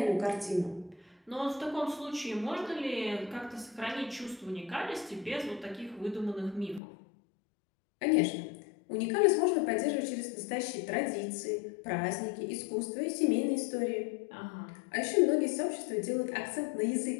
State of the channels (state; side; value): drops out; right; at 6.8 s